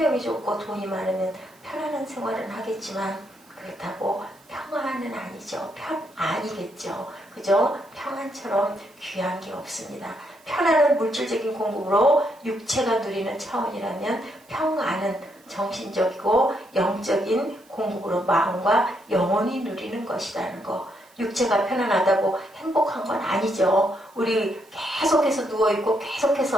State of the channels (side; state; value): right; noise; hiss, 30 dB below the sound